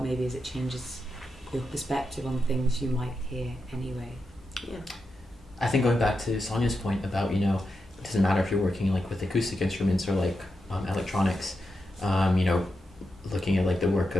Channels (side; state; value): both; normal; correlation 0.87